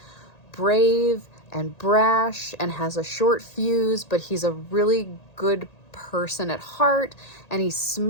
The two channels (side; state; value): right; late; 1.8 ms